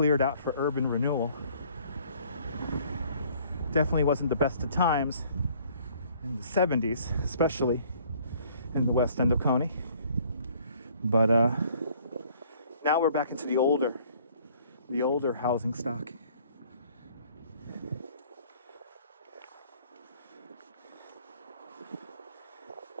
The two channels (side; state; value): both; inverted; correlation -0.58